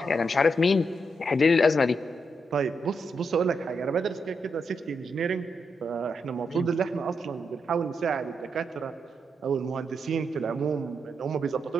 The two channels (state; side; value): normal; both; correlation 0.82